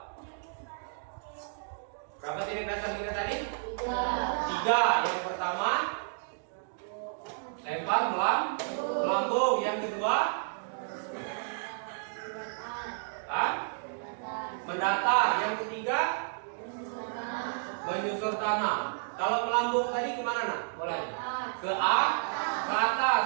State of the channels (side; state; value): left; silent; digital silence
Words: Berapa teknik dasar kita tadi? 3. Yang pertama lempar melambung. Yang kedua mendatar. Yang ketiga menyusur tanah. Kalau melambung tadi kemana Nak? Bolanya ke atas.